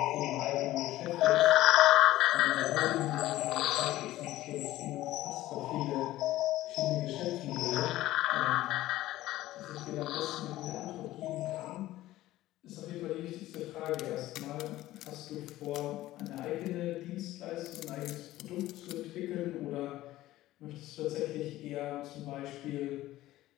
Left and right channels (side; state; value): right; quieter; 15.7 dB